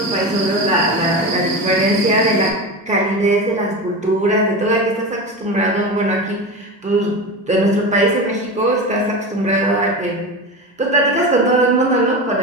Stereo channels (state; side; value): normal; both; correlation 0.24